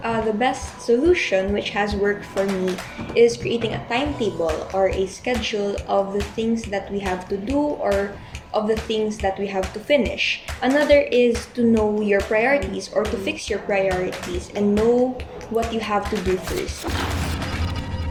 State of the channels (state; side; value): identical; both; correlation 1.00